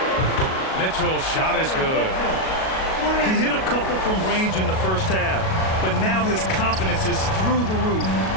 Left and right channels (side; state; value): right; late; 37 ms